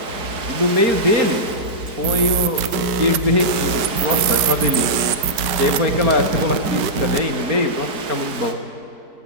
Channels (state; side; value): late; left; 4.5 ms